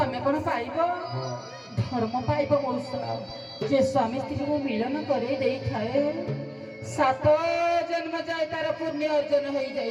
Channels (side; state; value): both; identical; correlation 1.00